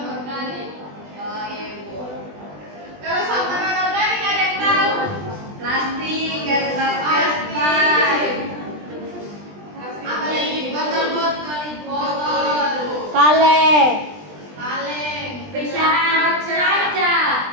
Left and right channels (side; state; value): left; late; 20 ms